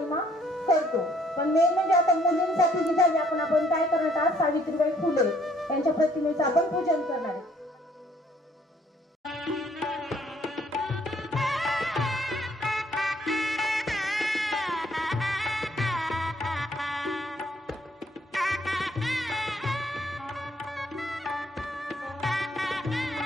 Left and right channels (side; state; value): both; normal; correlation 0.64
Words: करतो. पण मेन म्हणजे आता मुलींसाठी जी झाली, आपण काय करणार, आज सावित्रीबाई फुले यांच्या प्रतिमेचं आपण पूजन करणार आहे.